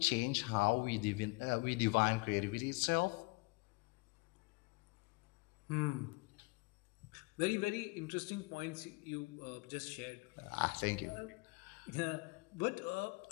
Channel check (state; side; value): quieter; right; 26.9 dB